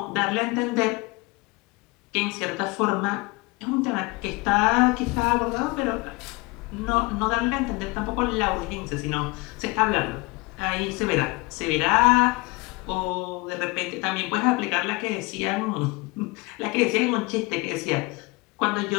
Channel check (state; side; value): quieter; right; 25.5 dB